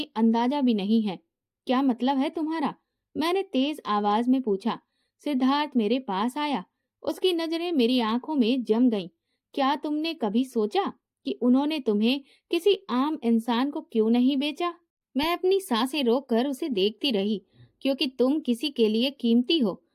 अंदाजा भी नहीं है। क्या मतलब है तुम्हारा? मैंने तेज आवाज में पूछा। सिद्धार्थ मेरे पास आया, उसकी नजरें मेरी आंखों में जम गईं। क्या तुमने कभी सोचा कि उन्होंने तुम्हें किसी आम इंसान को क्यों नहीं बेचा? मैं अपनी सांसें रोककर उसे देखती रही, क्योंकि तुम किसी के लिए कीमती हो,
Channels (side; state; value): both; identical; correlation 1.00